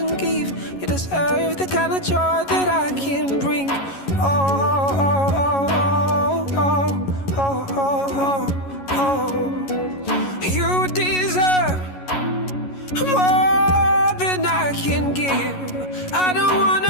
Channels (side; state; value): right; late; 11 ms